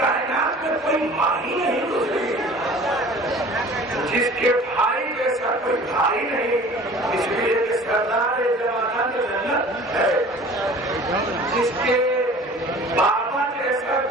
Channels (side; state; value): both; normal; correlation 0.45